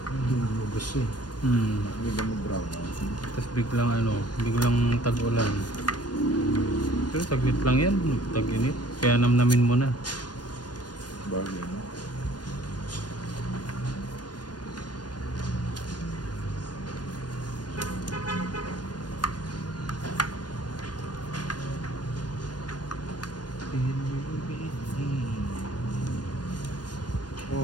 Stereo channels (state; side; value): late; right; 0.69 ms